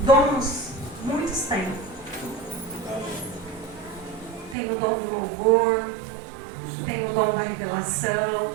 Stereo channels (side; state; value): left; drops out; at 4.5 s